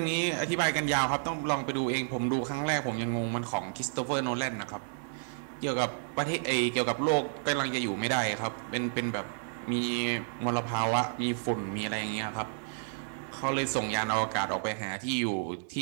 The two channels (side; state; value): left; silent; digital silence